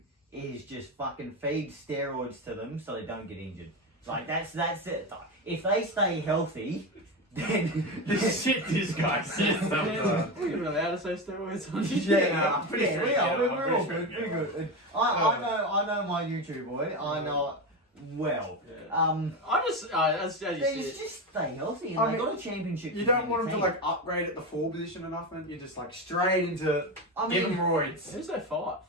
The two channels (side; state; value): both; normal; correlation 0.18